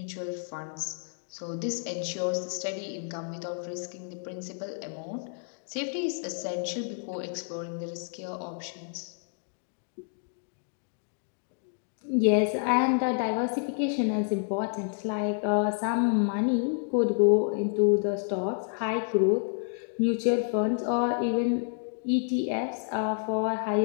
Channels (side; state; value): right; silent; 58 dB below the other